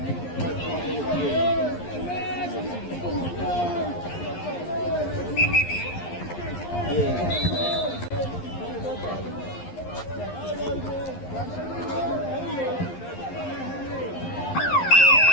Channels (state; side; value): late; right; 11 ms